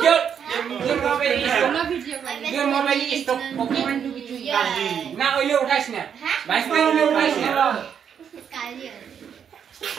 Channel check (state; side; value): quieter; left; 7.9 dB